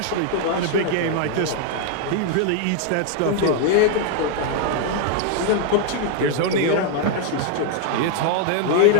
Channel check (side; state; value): both; different; correlation 0.00